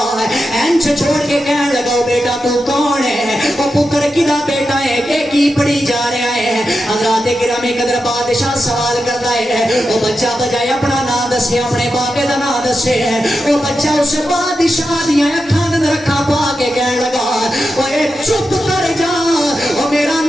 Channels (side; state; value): both; normal; correlation 0.89